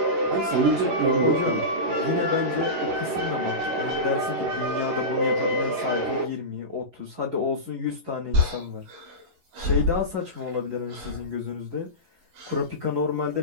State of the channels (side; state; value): left; late; 11 ms